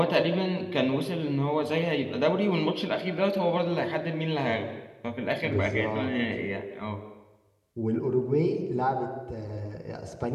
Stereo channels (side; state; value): both; identical; correlation 1.00